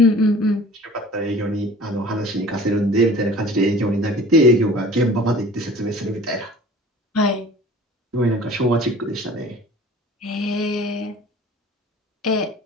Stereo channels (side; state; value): both; normal; correlation 0.45